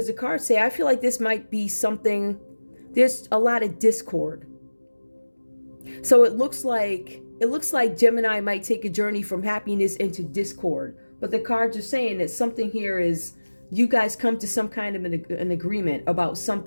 the cards say, I feel like this might be something, there's a lot of discord. So it looks like Gemini might take a journey from happiness into discord. But the cards are saying that something here is, you guys come to some kind of an agreement about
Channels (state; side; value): inverted; both; correlation -1.00